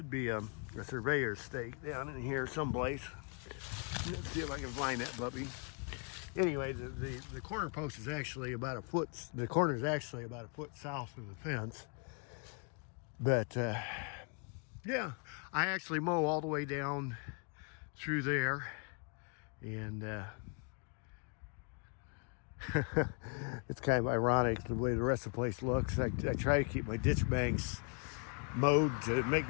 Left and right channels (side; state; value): right; quieter; 37.6 dB